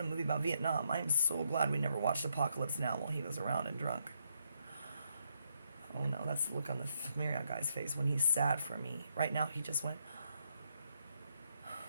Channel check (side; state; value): both; inverted; correlation -0.76